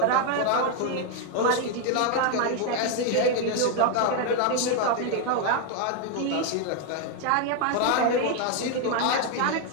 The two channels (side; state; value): both; different; correlation 0.00